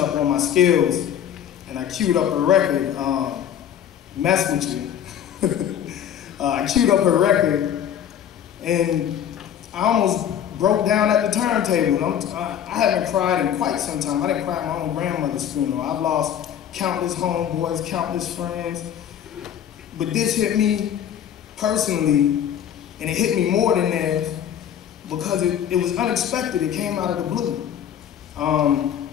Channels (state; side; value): quieter; right; 9.6 dB